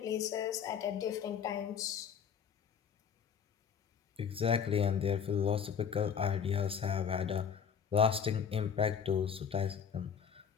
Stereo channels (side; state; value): right; quieter; 7.3 dB